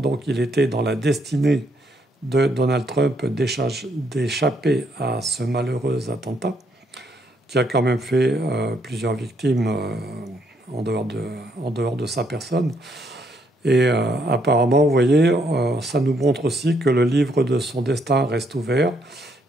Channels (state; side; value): normal; both; correlation 0.73